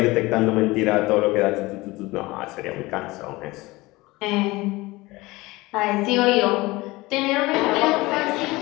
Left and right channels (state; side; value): quieter; right; 21.1 dB